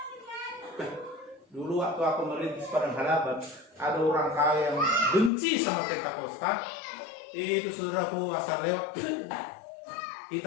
Dulu waktu aku merintis Padang Harapan, ada orang kaya yang benci sama Pentakosta. Itu saudaraku asal lewat,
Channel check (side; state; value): right; drops out; at 5.3 s